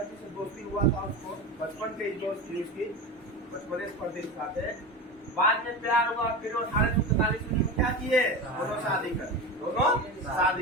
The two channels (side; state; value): both; normal; correlation 0.25